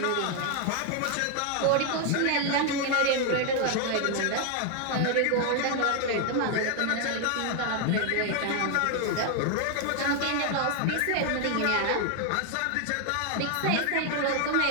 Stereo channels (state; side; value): different; both; correlation 0.00